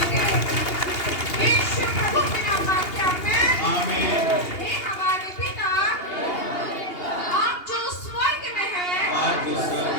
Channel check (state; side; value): late; right; 2.8 ms